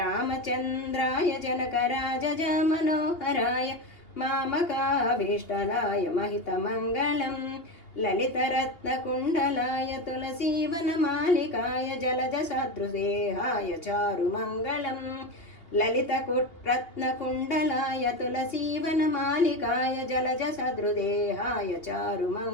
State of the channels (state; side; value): late; right; 3.0 ms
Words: जनकराजज मनोहराय मामकाभीष्टदाय महितमङ्गलम् ललितरत्नकुण्डलाय तुलसीवनमालिकाय जलजसदृशदेहाय चारुमङ्गलम् ललितरत्नकुण्डलाय तुलसीवनमालिकाय जलजसदृदेहाय